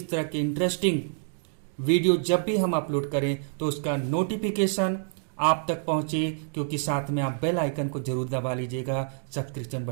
तरह के इंटरेस्टिंग वीडियो जब भी हम अपलोड करें तो उसका नोटिफिकेशन आप तक पहुंचे, क्योंकि साथ में आप बेल आइकन को जरूर दबा लीजिएगा सब्सक्रिप्शन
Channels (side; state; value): left; silent; digital silence